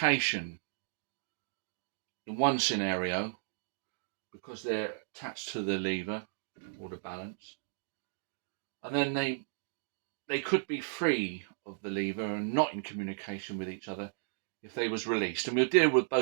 in one scenario because they're attached to the lever or the balance, and then they could be free of the lever and not in communication with each other if they was released, and we'll deal with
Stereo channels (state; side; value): silent; left; digital silence